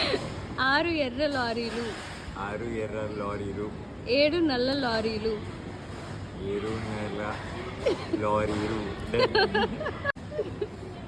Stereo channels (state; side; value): identical; both; correlation 1.00